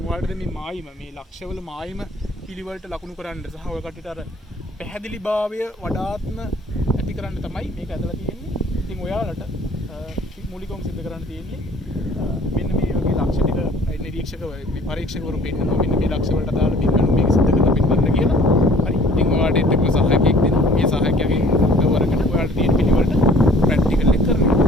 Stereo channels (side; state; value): both; normal; correlation 0.53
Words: ඔයාලට මේ මායිම මේ ලක්ෂවල මායිම පිළිවෙලට ලකුණු කරන්න සහ ඔය කටට අර පැහැදිලිභාවය වඩාත්ම ඇති කරන්න තමයි මේක ඇදලා තියෙන්නේ. ඉතින් ඔයාලට මූලිකවම සිද්ධ කරන්න තියෙන්නේ මෙන්න මේ වගේ ලක්ෂ ටික නිරීක්ෂක පරීක්ෂකවරු පෙන්නනවා. මෙන්න මේ ලක්ෂ වලට අදාළ බිම්බණු මේක සිද්ධ කරලා පෙන්නන්න කියලා. හරි. ඉතින් ඔයාලට එක්ක සහායකයෙක් දෙනවා. මේ සහායකයාගෙන් උදව් අරගෙන ඔයාලට තියෙන පිළිවෙලට ප්‍රැක්ටිකල් එක කරනවා.